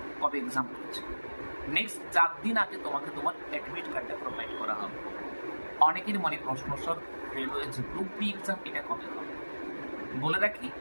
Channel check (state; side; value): inverted; both; correlation -1.00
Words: কবে এক্সাম রয়েছে। নেক্সট 4 দিন আগে তোমাকে তোমার অ্যাডমিট কার্ডটা প্রোভাইড করা হবে। অনেকের মনে প্রশ্ন, স্যার রেলওয়ে যে গ্রুপ বি এক্সাম এটা কবে হবে? বলে রাখি